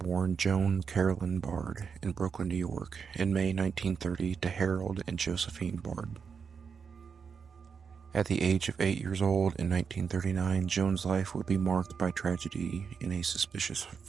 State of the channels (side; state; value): left; quieter; 6.2 dB